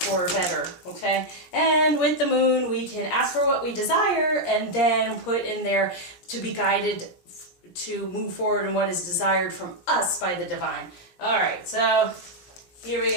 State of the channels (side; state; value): right; late; 17 ms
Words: for better, okay? And with the moon, we can ask for what we desire and then put in there to be guided to move forward in what is desired from us by the divine. All right, so here we